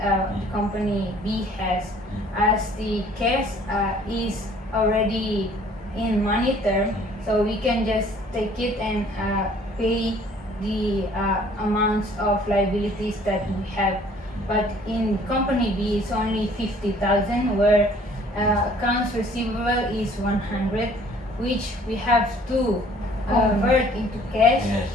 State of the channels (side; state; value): both; normal; correlation 0.56